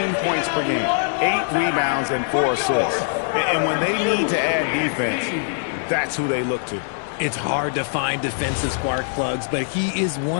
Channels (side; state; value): right; silent; digital silence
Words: points per game, 8 rebounds, and 4 assists. And when they need to add defense, that's who they look to. It's hard to find defensive spark plugs, but he is